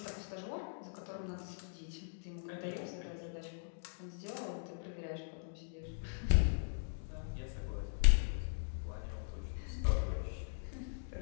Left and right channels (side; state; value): right; silent; digital silence